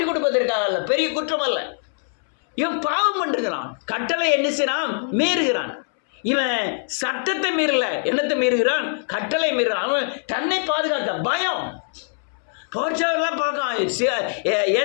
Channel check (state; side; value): silent; right; 64 dB below the other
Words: கொடுப்பதற்காக. பெரிய குற்றம் அல்ல. இவன் பாவம் பண்ணிருக்கிறான், கட்டளை என்ன செய்யறான்? மீறுகிறான். இவன் சட்டத்தை மீறல, என்னத்தை மீறுகிறான்? கட்டளை மீறுகிறான். அவன் தன்னை பாதுகாக்க பயம். போர்ச்சவர்லாம் பார்க்கான்,